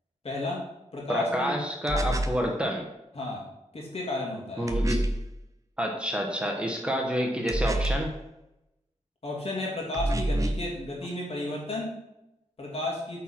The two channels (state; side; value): normal; both; correlation 0.76